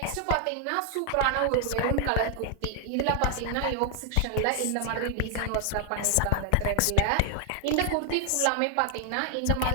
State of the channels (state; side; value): different; both; correlation 0.00